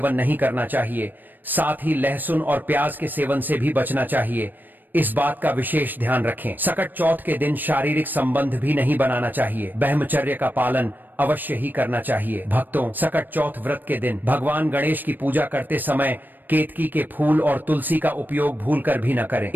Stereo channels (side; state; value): left; late; 0.090 ms